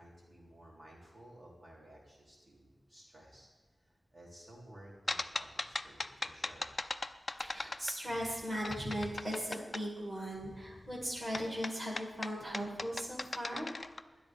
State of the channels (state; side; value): normal; both; correlation 0.93